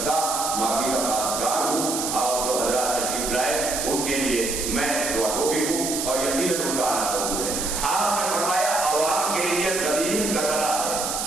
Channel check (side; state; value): right; noise; hiss, 2 dB below the sound